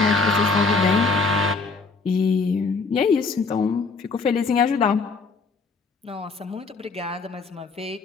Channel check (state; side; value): quieter; right; 4.3 dB